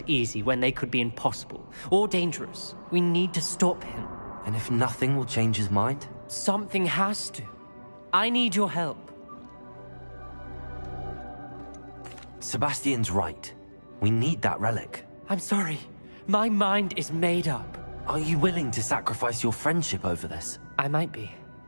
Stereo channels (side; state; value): both; inverted; correlation -1.00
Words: easy when they could be impossible or dangerous. We need to stop him. And if nothing will change his mind? Something has to. I need your help. Sebastian's right. We need that relic. I'm sorry. My mind is made up. Are you willing to sacrifice your friendship over this? I might be.